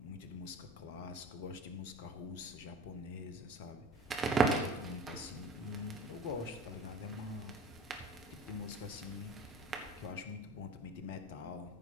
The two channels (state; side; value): noise; left; rumble, 17 dB below the sound